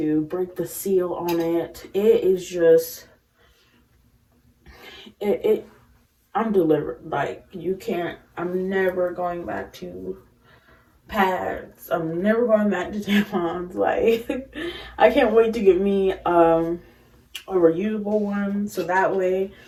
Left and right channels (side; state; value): both; identical; correlation 1.00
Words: break the seal on it. It is just, I'm delivered. Like, you can't, I'm never going back to pads. I'm never going back to tampons. Like, I can't wait to get me a reusable one, so that way,